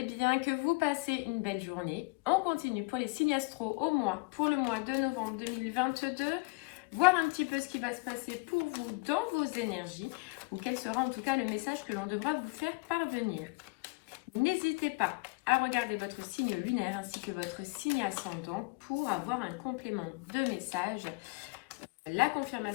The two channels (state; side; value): quieter; right; 28.4 dB